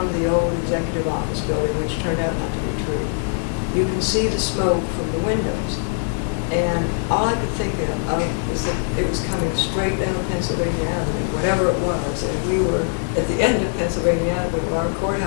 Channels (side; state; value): right; silent; 64 dB below the other